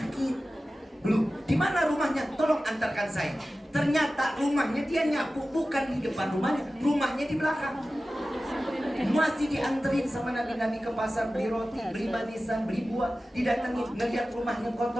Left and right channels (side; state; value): both; normal; correlation 0.95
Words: Belum, di mana rumahnya? Tolong antarkan saya. Ternyata rumahnya dia nyapu bukan di depan rumahnya, rumahnya di belakang. Masih dianterin sama Nabi ke pasar, beli roti, beli manisan, beli buah. Didatengin, ngeliat rumahnya